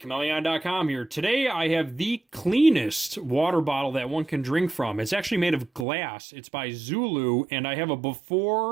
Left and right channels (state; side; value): drops out; left; at 5.9 s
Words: here. Today I have the cleanest water bottle that one can drink from. It's actually made of glass. It's by Zulu, and I have a